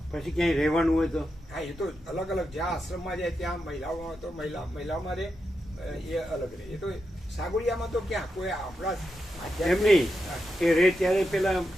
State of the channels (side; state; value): both; normal; correlation 0.87